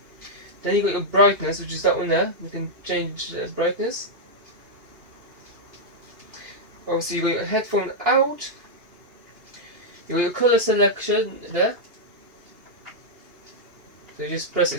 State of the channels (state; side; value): late; left; 2.8 ms